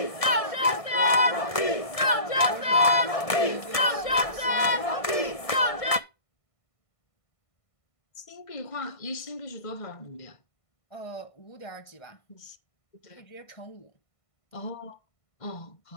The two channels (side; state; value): right; late; 1.7 ms